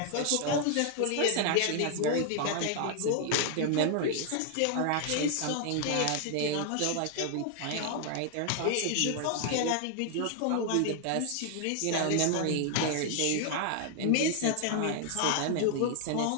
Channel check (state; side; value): different; both; correlation 0.00